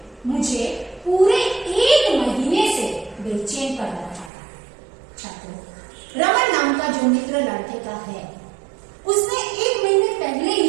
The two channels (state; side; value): drops out; left; at 4.3 s